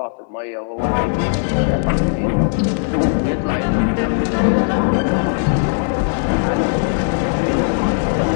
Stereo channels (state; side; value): silent; right; digital silence